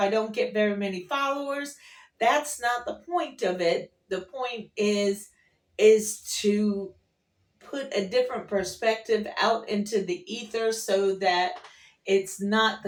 don't get very many followers, that's not the point of it. The point is to put a different perspective out into the ether so that it's not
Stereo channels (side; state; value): both; identical; correlation 1.00